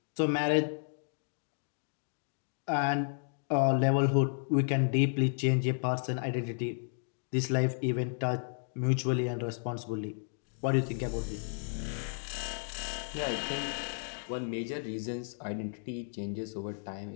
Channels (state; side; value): silent; right; digital silence